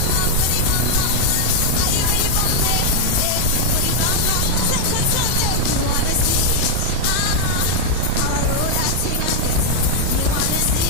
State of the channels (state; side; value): different; both; correlation -0.01